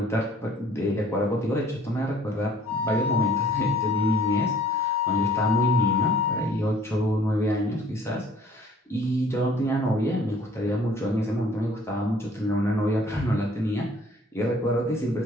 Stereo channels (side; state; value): both; normal; correlation 0.55